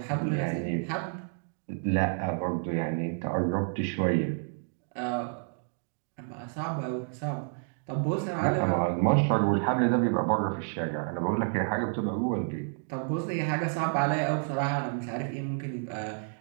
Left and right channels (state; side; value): silent; left; 58 dB below the other